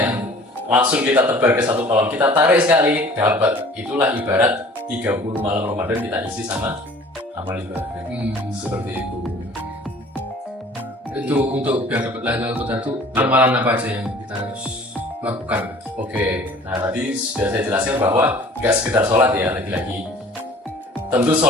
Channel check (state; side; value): normal; both; correlation 0.49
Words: langsung kita tebar ke satu kolam, kita tarik sekali, dapat. Itulah ibarat 30 malam Ramadan kita isi sama amal ibadah. Seperti itu. Itu untuk biar dapat Lailatul Qadar itu amalan apa aja yang kita harus lakukan? Oke, nah tadi sudah saya jelaskan bahwa nggak sekedar sholat ya, lagi-lagi. Tentu